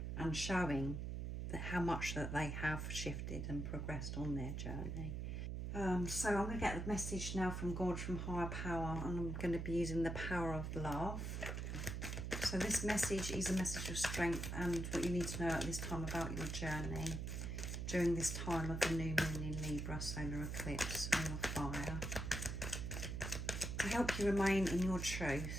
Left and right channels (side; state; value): right; noise; hum, 3 dB below the sound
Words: and showing that how much that they have shifted and progressed on their journey. So I'm going to get the message now from God, from higher power, and I'm going to be using the power of love. So this message is a message of strength and what you need to know at this time about your journey during this time of the new moon in Libra, solar eclipse, ring of fire. To help you remain in your